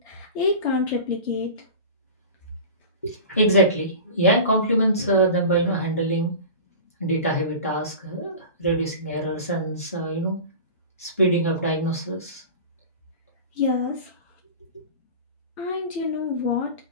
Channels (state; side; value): inverted; both; correlation -0.34